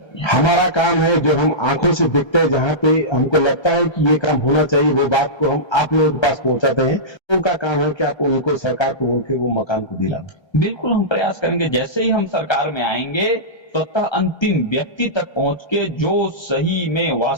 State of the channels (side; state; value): right; late; 1.3 ms